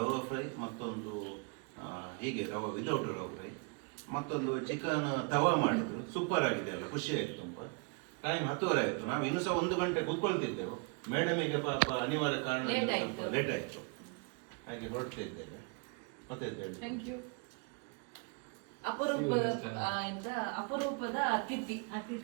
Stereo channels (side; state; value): left; quieter; 34.2 dB